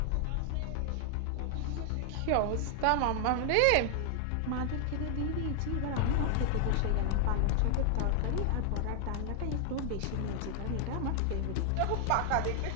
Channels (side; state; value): both; different; correlation 0.00